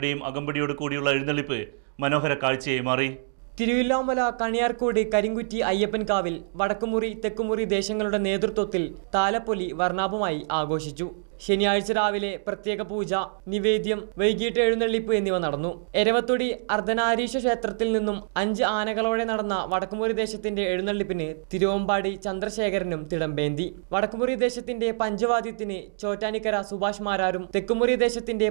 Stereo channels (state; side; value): silent; left; digital silence